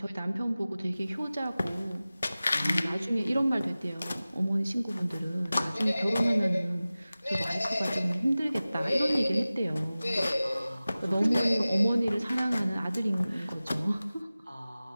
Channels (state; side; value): inverted; both; correlation -0.97